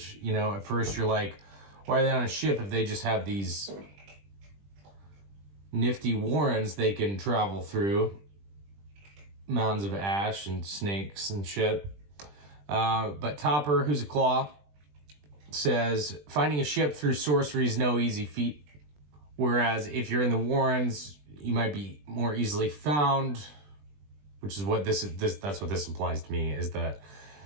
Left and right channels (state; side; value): late; left; 20 ms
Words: you know, at first you're like, why are they on a ship if they just have these nifty warrens they can travel through? Mounds of ash and snakes and shit. But Topper, who's a claw, says, finding a ship through sorcery is no easy feat. Whereas if you're in the warrens, you might be more easily found, which is what that's what this implies to me, is that